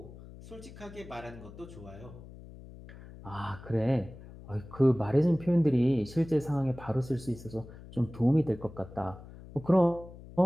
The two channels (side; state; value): left; noise; hum, 17 dB below the sound